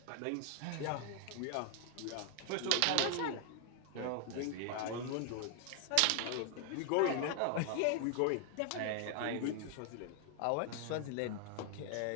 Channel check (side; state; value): both; different; correlation 0.00